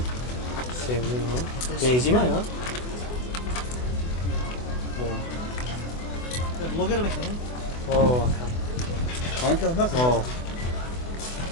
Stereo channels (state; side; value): late; right; 24 ms